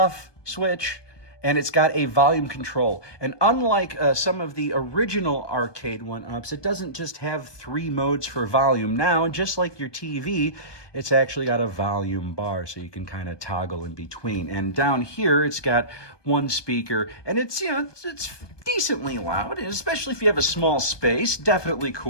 switch, and it's got a volume control. And unlike some of the original ARCADE1UPs, it doesn't just have 3 modes for volume. Now, just like your TV, it's actually got a volume bar, so you can kind of toggle in between. And down here, it's got 1 speaker, and it's, you know, it's decently loud, especially if you have a small space. Definitely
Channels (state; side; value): late; right; 1.2 ms